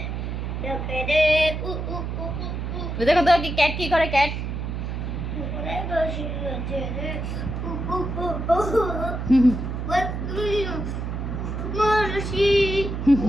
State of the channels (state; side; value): noise; right; hum, 4 dB below the sound